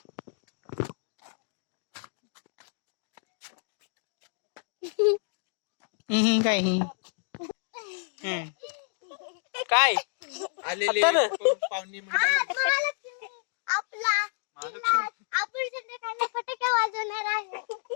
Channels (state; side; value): silent; right; digital silence